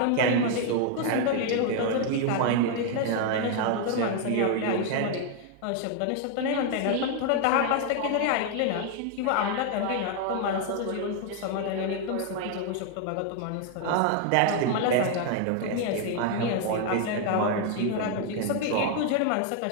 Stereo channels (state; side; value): different; both; correlation 0.01